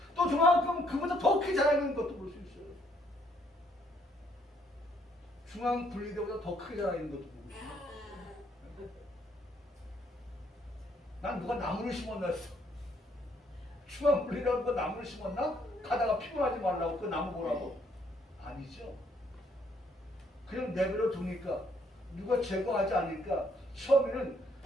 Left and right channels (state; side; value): normal; both; correlation 0.68